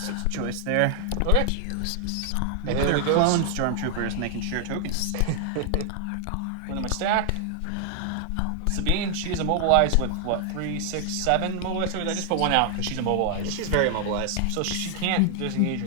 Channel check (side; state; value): both; different; correlation 0.00